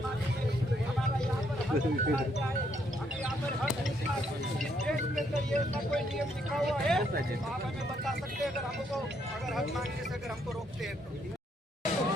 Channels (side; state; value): both; normal; correlation 0.72